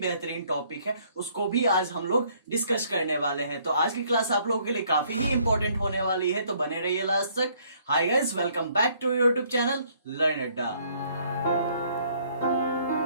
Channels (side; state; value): both; inverted; correlation -0.64